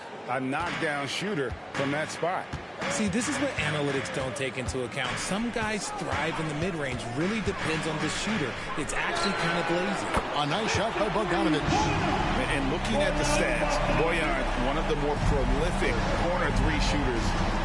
a knockdown shooter from that spot. See, this is what analytics don't take into account. Some guys thrive in the mid-range. Really depends on the shooter. It's actually kind of lazy. A nice shot by Bogdanovic. And looking at the stats, Bojan, one of the more prolific corner 3 shooters.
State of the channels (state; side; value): identical; both; correlation 1.00